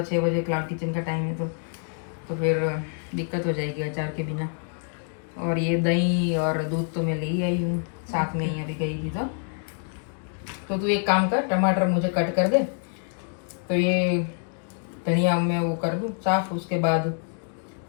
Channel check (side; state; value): right; silent; 55 dB below the other